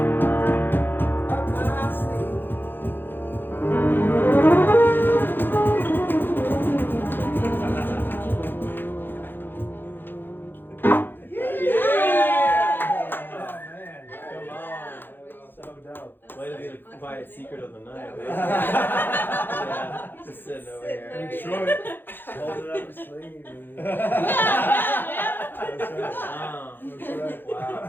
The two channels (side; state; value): right; late; 0.098 ms